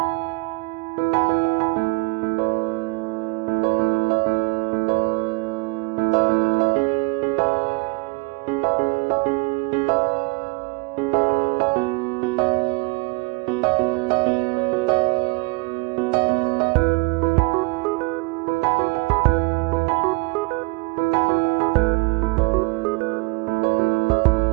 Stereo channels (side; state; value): left; quieter; 27.0 dB